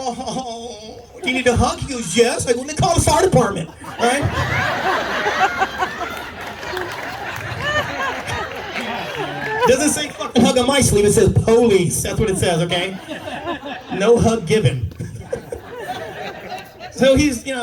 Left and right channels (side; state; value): both; identical; correlation 1.00